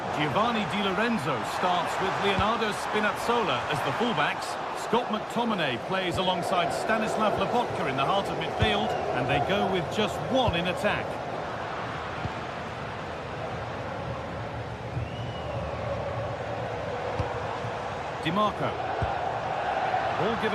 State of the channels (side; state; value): both; identical; correlation 1.00